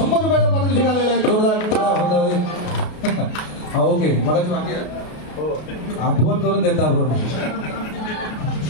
रुपयाचं पारितोषिक आलेलं आहे. जोरदार. हा ओके, मगाची बाकी आहे आठवण करून देता आपण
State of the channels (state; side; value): late; right; 33 ms